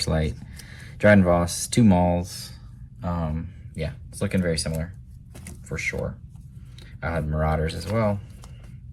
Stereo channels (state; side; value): identical; both; correlation 1.00